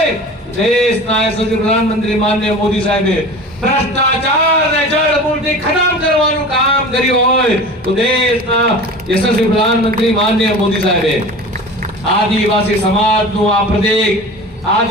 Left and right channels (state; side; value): normal; both; correlation 0.37